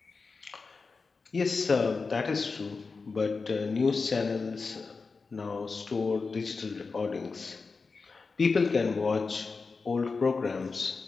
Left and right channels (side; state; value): right; quieter; 4.4 dB